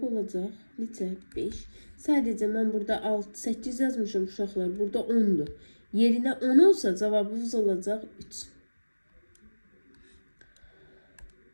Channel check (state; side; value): inverted; both; correlation -1.00